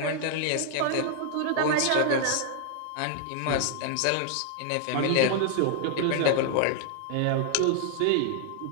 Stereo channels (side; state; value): both; different; correlation 0.00